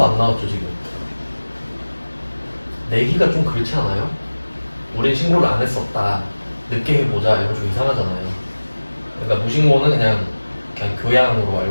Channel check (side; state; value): both; inverted; correlation -1.00